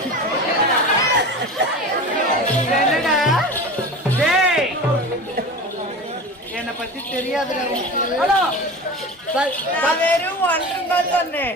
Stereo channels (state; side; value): normal; both; correlation 0.32